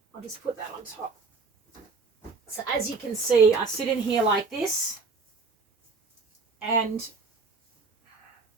just put that on top. So as you can see, I sit in here like this, and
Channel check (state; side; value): quieter; left; 4.3 dB